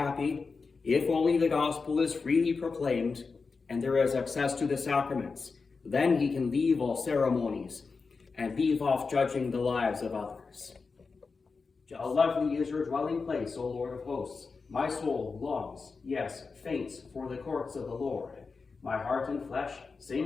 if only the gospel is freely proclaimed and there is access to the sacraments. Then he can leave all ceremonies and leave off judging the lives of others. How lovely is your dwelling place, O Lord of hosts. My soul longs, yes, faints for the courts of the Lord. My heart and flesh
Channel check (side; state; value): right; quieter; 4.6 dB